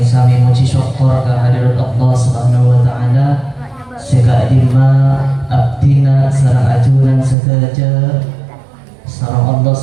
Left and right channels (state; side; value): drops out; left; at 7.4 s